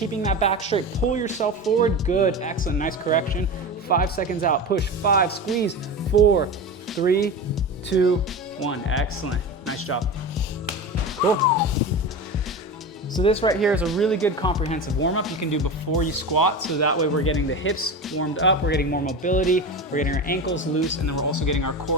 that back straight. Pull yourself forward, good, excellent, nice correction. 5 seconds out, push, 5, squeeze, 4, 3, 2, 1, excellent, nice job. Cool. So this right here is a really good comprehensive warm-up you can do before you squat, so that way we're getting the hips warmed up, we're getting more mobility, we're getting our ankles loose, and then we're also getting our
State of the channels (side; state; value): both; normal; correlation 0.26